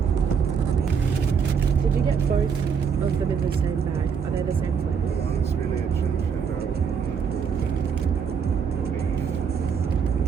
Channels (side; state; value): left; quieter; 6.7 dB